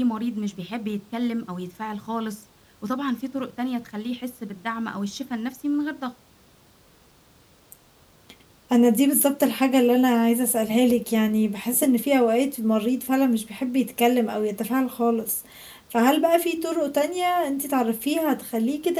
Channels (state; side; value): identical; both; correlation 1.00